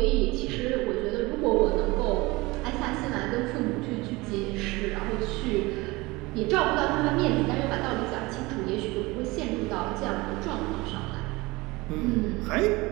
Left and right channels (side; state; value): left; quieter; 22.5 dB